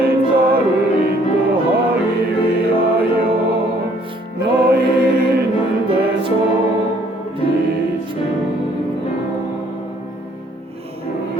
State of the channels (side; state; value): both; normal; correlation 0.62